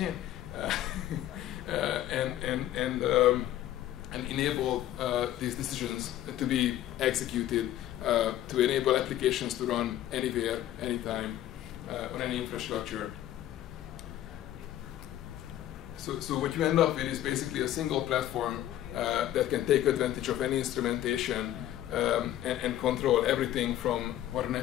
and enable these decisions to be executed to enable applications to run anywhere, anytime, on any infrastructure. So what you end up with is basically a single platform that can take advantage of any instrumentation and control everything from what an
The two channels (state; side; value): quieter; right; 12.9 dB